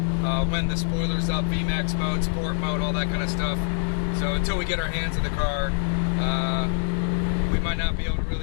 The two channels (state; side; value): silent; right; digital silence